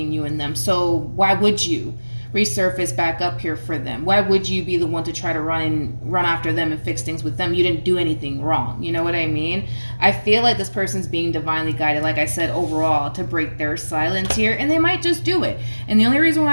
you and them. So why would you resurface back up here for them? Why would you be the one to try to run after them and fix things with them? You didn't do anything wrong. You know what I mean? I feel like this person's being divinely guided, like I said, overall, to break their silence here, and they might just do it. And the only reason why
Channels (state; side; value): inverted; both; correlation -1.00